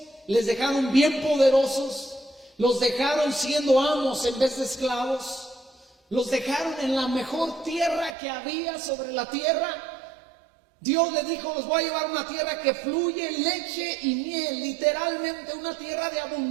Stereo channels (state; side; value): drops out; left; at 8.2 s